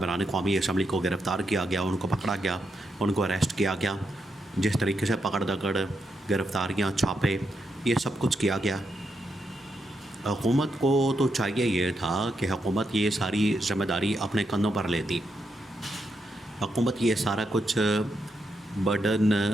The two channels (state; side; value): normal; both; correlation 0.82